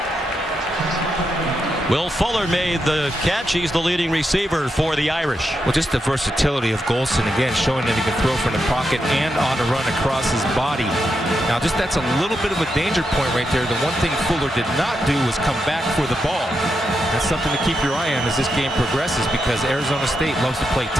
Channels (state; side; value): normal; both; correlation 0.84